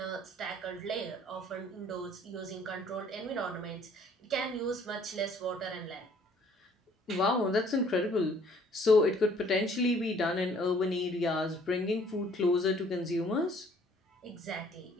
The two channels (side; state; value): both; normal; correlation 0.59